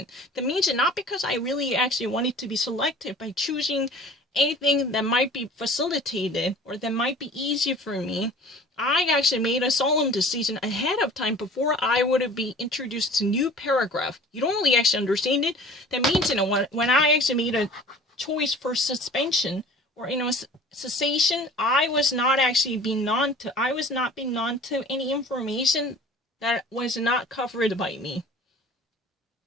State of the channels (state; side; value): normal; both; correlation 0.45